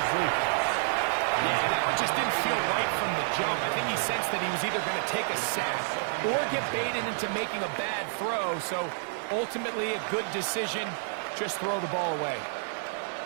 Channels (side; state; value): left; silent; 58 dB below the other